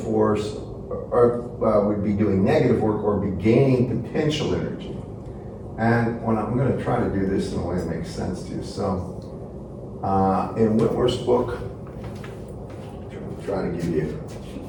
would be doing negative work or be gaining potential energy. And when I'm going to try to do this in a way that makes sense to you. So, in Whitworth's book, I'm trying to give you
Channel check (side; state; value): both; identical; correlation 1.00